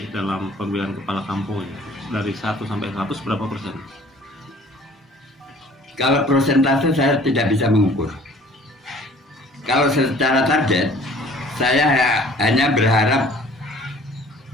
dalam pemilihan kepala kampung ini? Dari 1 sampai 100 berapa persen? Kalau persentase saya tidak bisa mengukur. Kalau secara target, saya hanya berharap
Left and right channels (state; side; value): normal; both; correlation 0.52